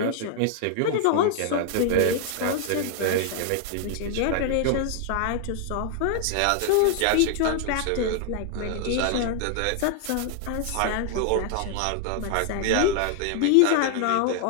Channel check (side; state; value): both; different; correlation 0.00